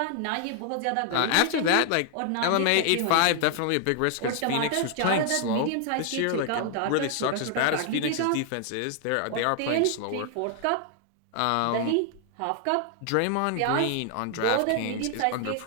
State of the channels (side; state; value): both; different; correlation 0.00